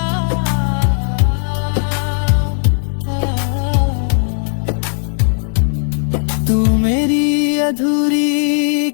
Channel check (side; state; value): right; silent; 59 dB below the other